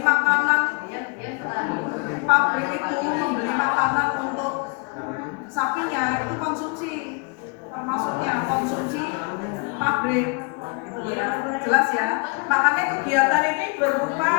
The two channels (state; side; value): quieter; right; 33.2 dB